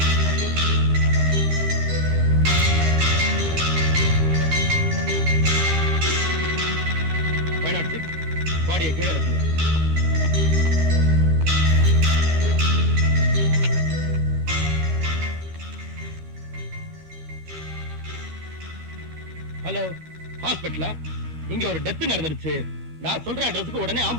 பாடியை கீழே இறக்குங்க. ஹலோ, ஹாஸ்பிட்டலா? இங்க ஒரு டெத் நடந்துருச்சு. நான் சொல்ற அட்ரஸுக்கு உடனே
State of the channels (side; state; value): left; late; 13 ms